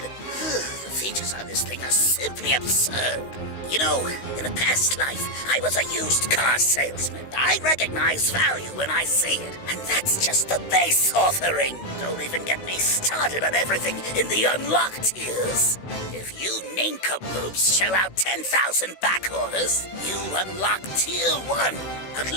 The features on this thing are simply absurd. You know, in a past life, I was a used car salesman. I recognize value when I see it, and that's just the base offering. Don't even get me started on everything in the unlocked tiers. If you nincompoops shell out 10,000 back orders, you unlock Tier 1, a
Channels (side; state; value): right; late; 16 ms